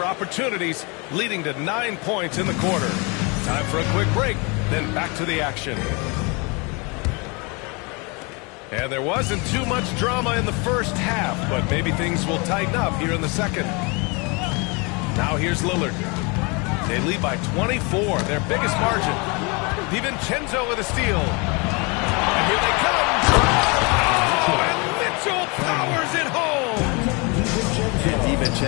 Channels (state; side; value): quieter; right; 29.9 dB